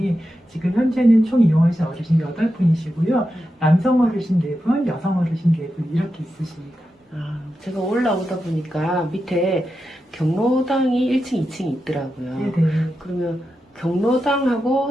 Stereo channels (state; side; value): normal; both; correlation 0.89